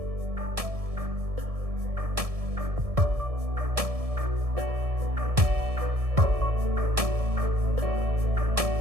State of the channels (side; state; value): left; late; 1.7 ms